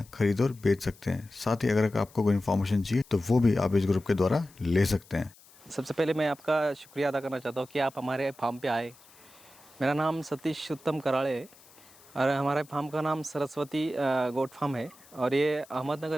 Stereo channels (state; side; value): noise; left; hiss, 25 dB below the sound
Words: खरीद और बेच सकते हैं। साथ ही अगर आपको कोई इन्फॉर्मेशन चाहिए तो वो भी आप इस ग्रुप के द्वारा ले सकते हैं। सबसे पहले मैं आपका शुक्रिया अदा करना चाहता हूँ कि आप हमारे फार्म पे आए। मेरा नाम सतीश उत्तम कराड़े है और हमारे फार्म का नाम सरस्वती गोट फार्म है। और ये अहमदनगर